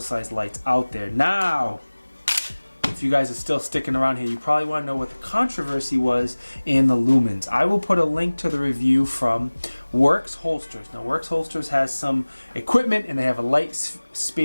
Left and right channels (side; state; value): both; inverted; correlation -1.00